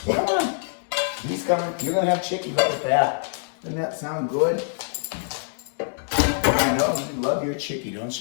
Come on. He's coming. You're gonna have chicky. Look at that. Doesn't that sound good? I know. You love your chicky, don't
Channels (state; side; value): silent; right; digital silence